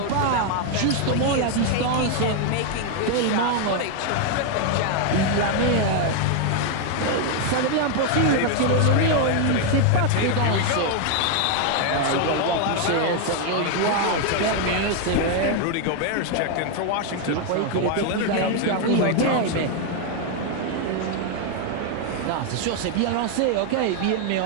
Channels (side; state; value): both; different; correlation 0.01